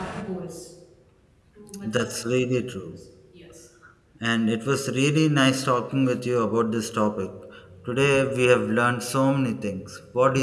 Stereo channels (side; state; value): both; identical; correlation 1.00